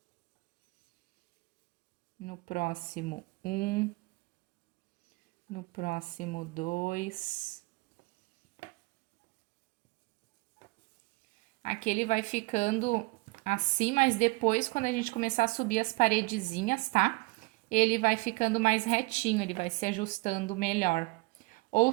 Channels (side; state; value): left; quieter; 26.1 dB